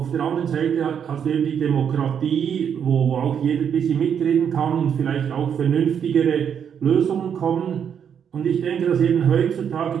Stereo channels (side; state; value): left; quieter; 8.0 dB